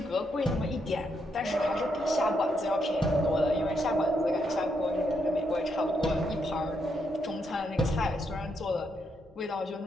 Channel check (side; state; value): both; normal; correlation 0.79